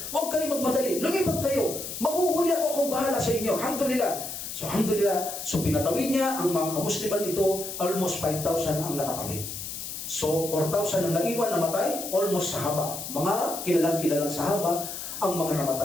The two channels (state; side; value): noise; left; hiss, 7 dB below the sound